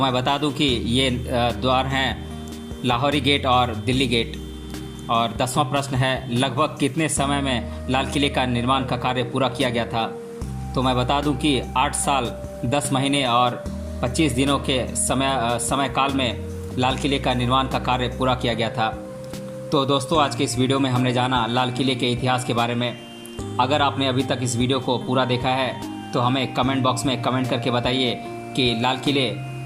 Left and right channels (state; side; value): identical; both; correlation 1.00